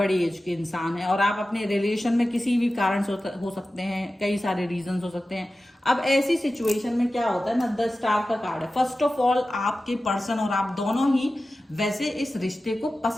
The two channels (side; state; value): both; normal; correlation 0.94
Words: एज के इंसान हैं और आप अपने रिलेशन में किसी भी कारण से हो सकते हैं, कई सारे रीजंस हो सकते हैं। अब ऐसी सिचुएशन में क्या होता है ना, द स्टार का कार्ड है। फर्स्ट ऑफ ऑल, आपके पर्सन और आप दोनों ही वैसे इस रिश्ते को